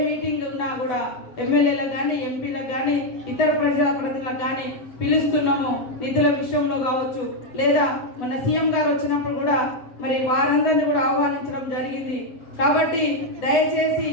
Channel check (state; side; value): late; right; 8.0 ms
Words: మీటింగ్ ఉన్నా కూడా ఎమ్మెల్యేలకు కానీ, ఎంపీలకు కానీ, ఇతర ప్రజాప్రతినిధులకు కానీ పిలుస్తున్నాము. నిధుల విషయంలో కావచ్చు, లేదా మన సీఎం గారు వచ్చినప్పుడు కూడా మరి వారందరినీ కూడా ఆహ్వానించడం జరిగింది. కాబట్టి దయచేసి